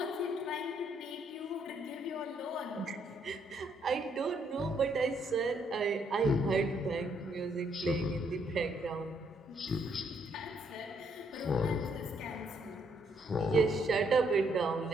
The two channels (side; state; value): both; normal; correlation 0.71